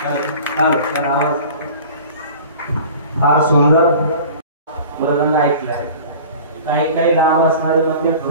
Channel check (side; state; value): both; inverted; correlation -0.42